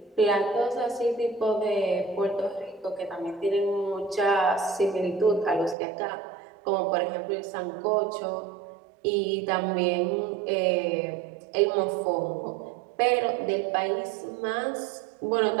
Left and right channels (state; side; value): drops out; left; at 5.8 s